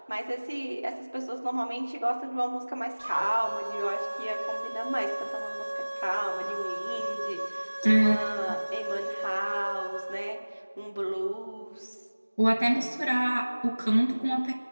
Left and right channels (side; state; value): both; inverted; correlation -1.00